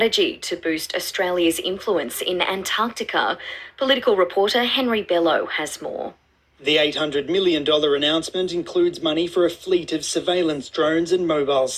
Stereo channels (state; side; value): identical; both; correlation 1.00